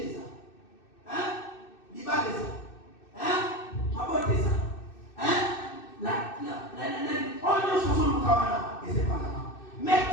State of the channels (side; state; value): right; late; 2.6 ms